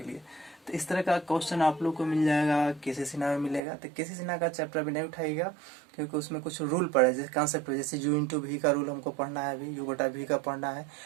लिए? तो इस तरह का क्वेश्चन आप लोग को मिल जाएगा केसी सिन्हा में मिलेगा। तो केसी सिन्हा का चैप्टर भी नहीं उठाइएगा क्योंकि उसमें कुछ रूल पड़े, जैसे कॉन्सेप्ट, जैसे u इंटू वी का रूल हमको पढ़ना है, अभी u बटा वी का पढ़ना है,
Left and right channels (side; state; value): left; drops out; at 3.6 s